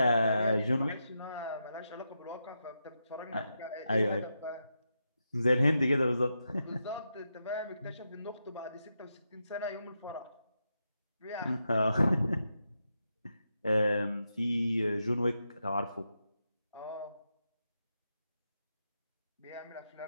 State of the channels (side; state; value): both; inverted; correlation -0.86